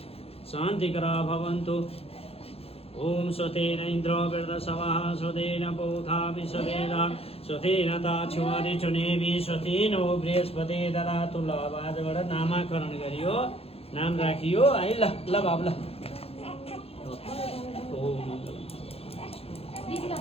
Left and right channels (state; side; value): late; right; 0.29 ms